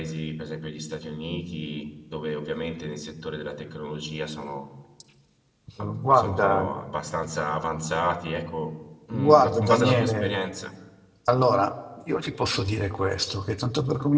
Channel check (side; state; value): both; identical; correlation 1.00